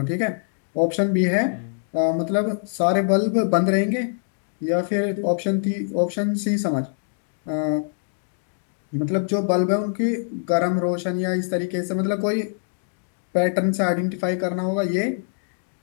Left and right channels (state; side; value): silent; right; digital silence